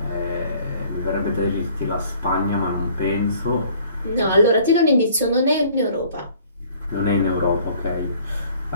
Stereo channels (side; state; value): both; inverted; correlation -0.56